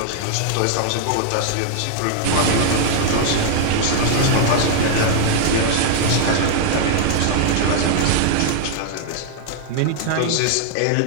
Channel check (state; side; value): different; both; correlation 0.00